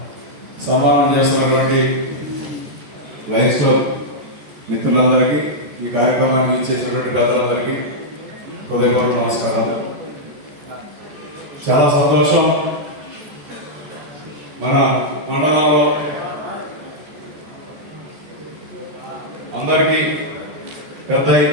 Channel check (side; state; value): left; late; 14 ms